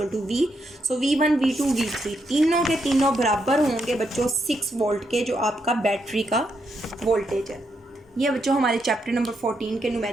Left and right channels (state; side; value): normal; both; correlation 0.80